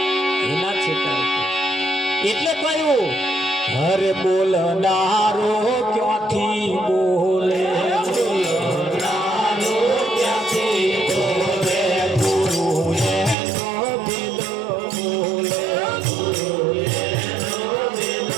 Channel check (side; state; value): left; drops out; at 13.4 s